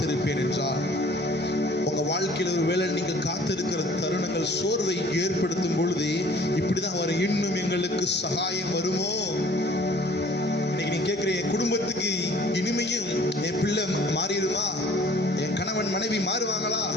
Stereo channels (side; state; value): both; normal; correlation 0.53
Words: என்றால் உங்க வாழ்க்கை வாழ்க்கையில் ஒரு வேளை நீங்கள் காத்திருக்கிற தருணங்கள் சோர்வை ஏற்படுத்தும் பொழுது இப்படிதான் வர இன்னும் எங்களுக்கு சகாயம் வருமோ? இன்னைக்கு நீ கேட்கிற என் குடும்பத்துக்கு இனிமையும் என் பிள்ளை மாறிடுமா, என் கணவன் மனைவி மாறுவாங்களா,